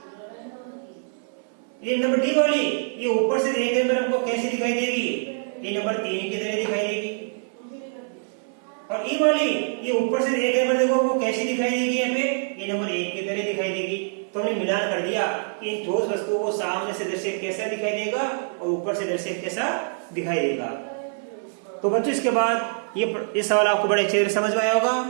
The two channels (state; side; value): silent; left; digital silence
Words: ये नंबर डी वाली ये ऊपर से देखने पर हमको कैसी दिखाई देगी, ये नंबर 3 की तरह दिखाई देगी। और ई वाली ये ऊपर से देखने पर देखो वो कैसी दिखाई देगी, यहाँ पे ये नंबर 1 की तरह दिखाई देगी। तो हमने मिलान कर दिया कि इन ठोस वस्तुओं को सामने से दृश्य कैसा दिखाई देगा और ऊपर से दृश्य कैसा दिखाई देगा। तो बच्चों इसके बाद ये सवाल आपको बड़े अच्छे से समझ में आया होगा।